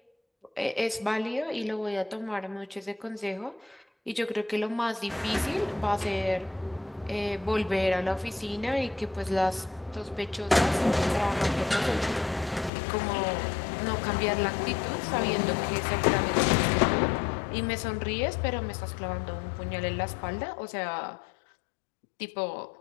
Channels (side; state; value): right; drops out; at 12.7 s